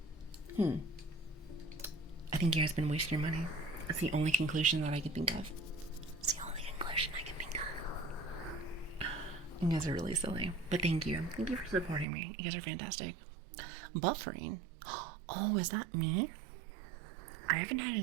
I think you guys been wasting your money. That's the only conclusion that I can think of. It's the only conclusion I can think of. You guys are really silly. But thank you. Thank you for supporting me. You guys are fantastic. Buffering? Oh, is that me? I haven't had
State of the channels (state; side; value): drops out; left; at 12.1 s